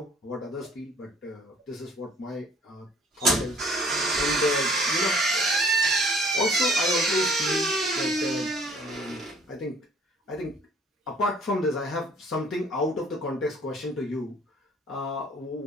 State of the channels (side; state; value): both; normal; correlation 0.56